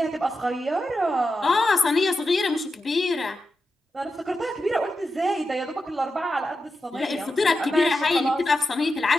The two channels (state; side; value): normal; both; correlation 0.89